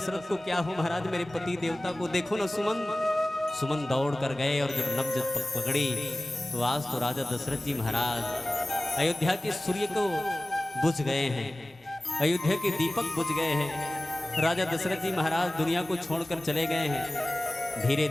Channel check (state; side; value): normal; both; correlation 0.97